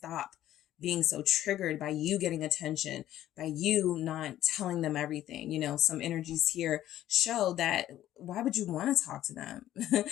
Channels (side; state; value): right; quieter; 12.9 dB